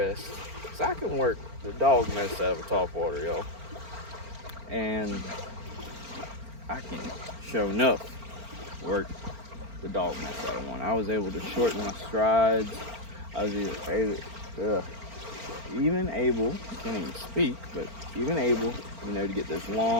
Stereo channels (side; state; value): left; late; 4.4 ms